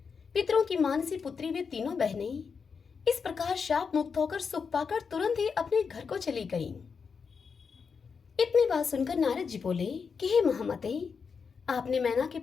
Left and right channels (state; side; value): quieter; right; 5.7 dB